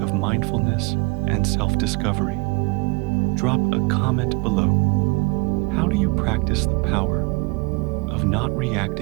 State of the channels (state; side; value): quieter; left; 27.8 dB